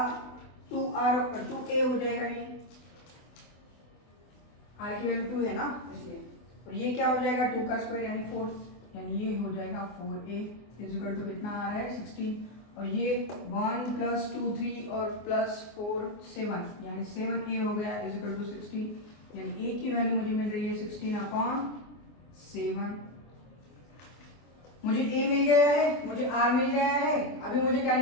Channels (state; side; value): late; right; 24 ms